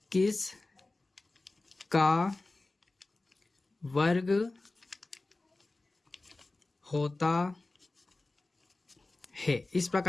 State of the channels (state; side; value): quieter; right; 3.1 dB